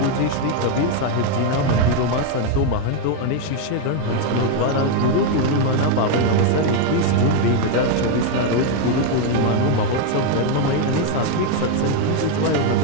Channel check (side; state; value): both; different; correlation 0.01